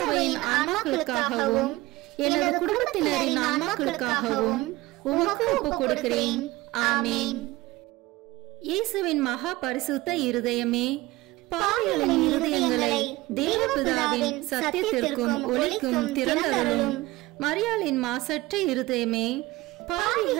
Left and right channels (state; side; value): quieter; left; 19.4 dB